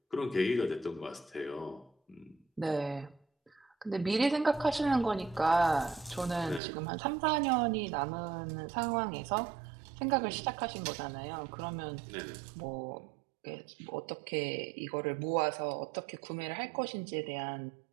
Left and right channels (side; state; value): left; drops out; at 6.6 s